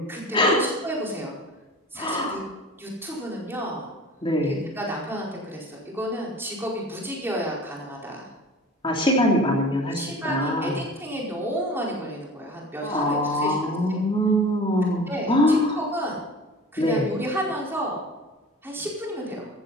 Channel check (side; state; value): both; normal; correlation 0.39